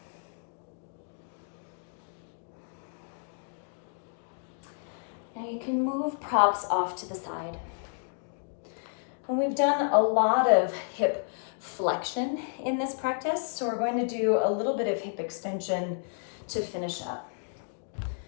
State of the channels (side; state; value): right; silent; digital silence